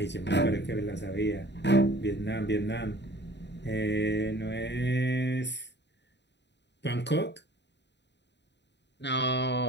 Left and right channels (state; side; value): late; right; 0.51 ms